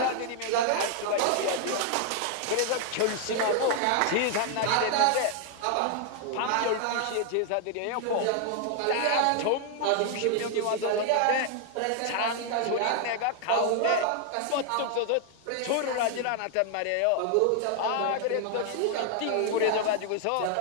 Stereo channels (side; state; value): both; different; correlation 0.00